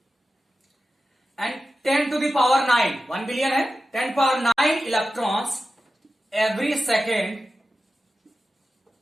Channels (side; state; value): both; normal; correlation 0.93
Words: and 10 to the power 9, 1 billion है, 10 पावर 9 इलेक्ट्रॉन्स एवरी